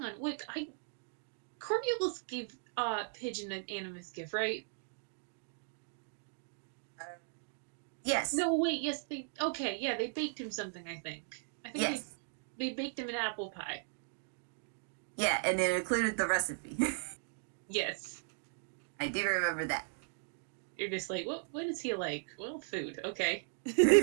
on. Wick, I Coriolis gave Pigeon an animus gift, right? Uh, yes. No, wait, yes, they okay, yeah, they baked him something, I think. I think Yes. they baked him an apple pie. Yeah, and it included the recipe. Yes. I do remember that. You're just like, what is he like? Well, food, okay.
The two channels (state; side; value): silent; left; digital silence